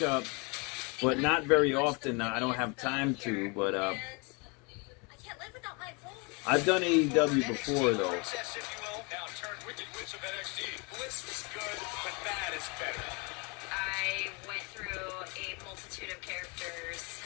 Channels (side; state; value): right; quieter; 30.4 dB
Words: but not very often. I don't have time to, but I've done AEW before, though. Princess, if you will, now turned Wicked Witch of NXT. Bliss was good, but that is better. I went through a multitude of characters